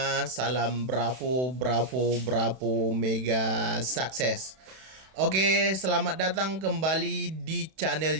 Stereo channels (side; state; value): left; late; 31 ms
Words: Salam Bravo, Bravo, Bravo, Mega Sukses. Oke, selamat datang kembali di channel